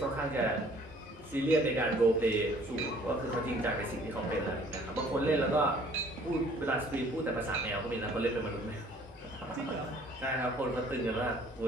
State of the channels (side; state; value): both; normal; correlation 0.56